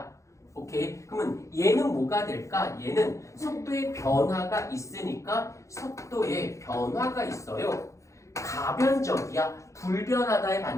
오케이? 그러면 얘는 뭐가 될까? 얘는 속도의 변화가 있으니까 속도에 변화가 있어요. 가변적이야. 불변하다의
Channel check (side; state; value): right; late; 0.15 ms